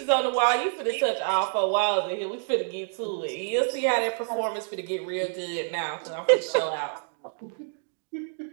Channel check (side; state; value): left; silent; digital silence